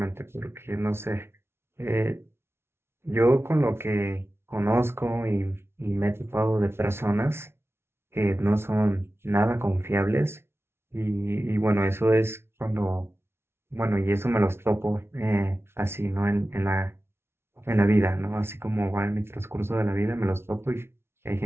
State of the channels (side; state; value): left; late; 0.12 ms